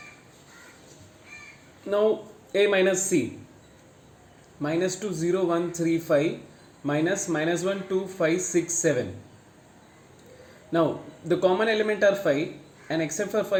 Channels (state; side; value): identical; both; correlation 1.00